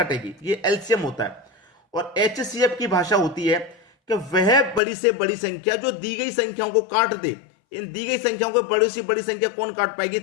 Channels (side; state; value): right; drops out; at 4.8 s